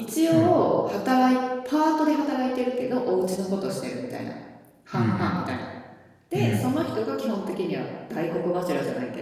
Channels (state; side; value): identical; both; correlation 1.00